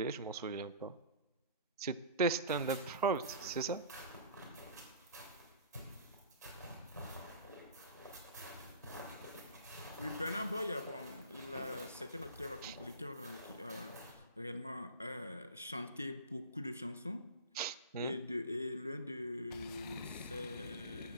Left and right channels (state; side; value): inverted; both; correlation -0.36